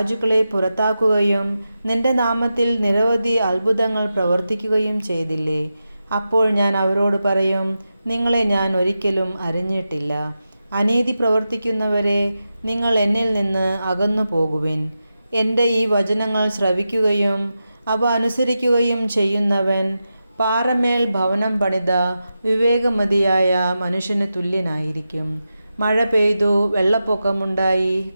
പുറത്താക്കുകയും നിന്റെ നാമത്തിൽ നിരവധി അത്ഭുതങ്ങൾ പ്രവർത്തിക്കുകയും ചെയ്തില്ലേ? അപ്പോൾ ഞാൻ അവരോട് പറയും, നിങ്ങളെ ഞാൻ ഒരിക്കലും അറിഞ്ഞിട്ടില്ല. അനീതി പ്രവർത്തിക്കുന്നവരെ, നിങ്ങൾ എന്നിൽ നിന്ന് അകന്നു പോകുവിൻ. എൻ്റെ ഈ വചനങ്ങൾ ശ്രവിക്കുകയും അവ അനുസരിക്കുകയും ചെയ്യുന്നവൻ പാറമേൽ ഭവനം പണിത വിവേകമതിയായ മനുഷ്യന് തുല്യനായിരിക്കും. മഴ പെയ്തു, വെള്ളപ്പൊക്കമുണ്ടായി,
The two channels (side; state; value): both; inverted; correlation -0.90